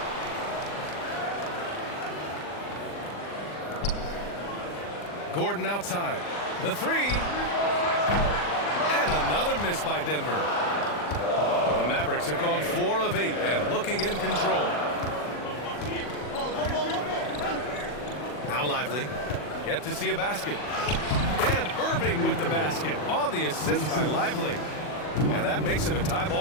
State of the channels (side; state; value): right; late; 40 ms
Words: Gordon outside. The 3. And another miss by Denver. The Mavericks have gone 4 of 8 and looking in control. Now Lively. Yet to see a basket. And Irving with the basket on the assist by Lively. And that makes it a tie